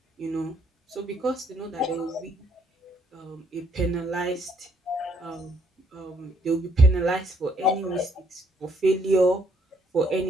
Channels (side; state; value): both; normal; correlation 0.68